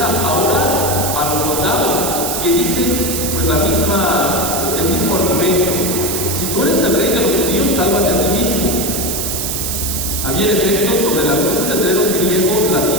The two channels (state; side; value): noise; right; hiss, 2 dB below the sound